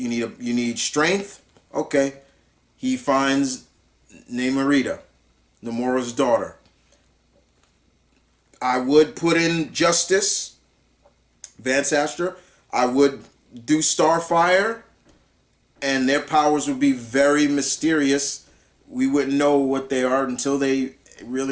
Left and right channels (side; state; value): both; identical; correlation 1.00